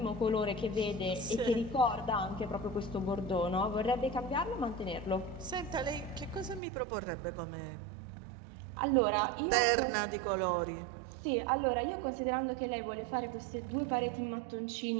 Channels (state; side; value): drops out; left; at 6.6 s